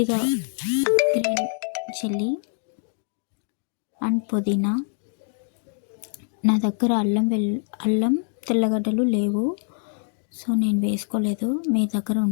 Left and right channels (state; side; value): silent; right; 58 dB below the other